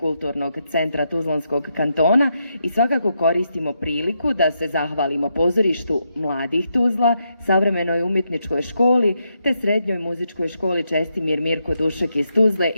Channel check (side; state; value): both; inverted; correlation -0.81